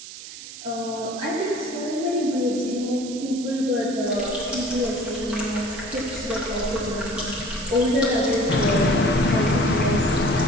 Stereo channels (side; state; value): right; noise; hiss, 13 dB below the sound